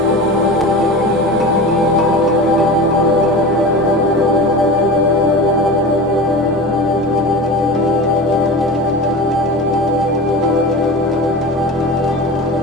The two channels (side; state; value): both; normal; correlation 0.30